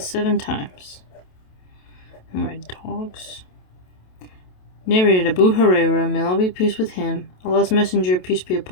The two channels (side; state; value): right; late; 27 ms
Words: 7 times. Alright, dogs. Narrated Abu Hurairah, may Allah be pleased with him, Allah's Messenger, peace be